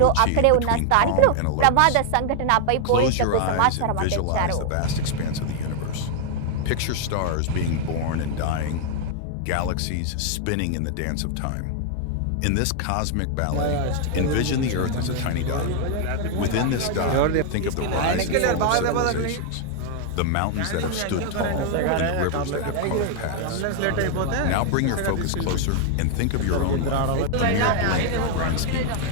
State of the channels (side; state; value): both; different; correlation 0.00